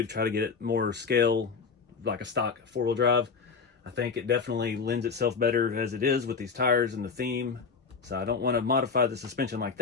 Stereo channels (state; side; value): quieter; right; 5.3 dB